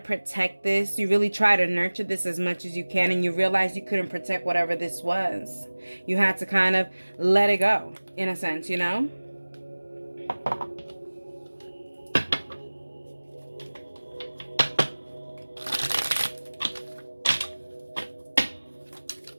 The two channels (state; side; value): inverted; both; correlation -1.00